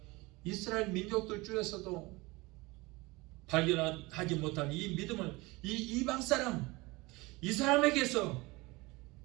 이스라엘 민족들 중에서도 발견하지 못한 이 믿음을 이 이방 사람, 이 사람에게서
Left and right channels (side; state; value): left; quieter; 22.9 dB